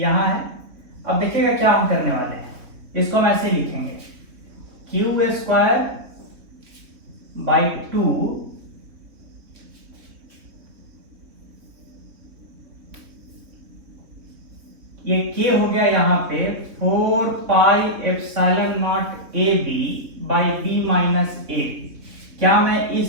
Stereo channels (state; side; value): late; left; 3.6 ms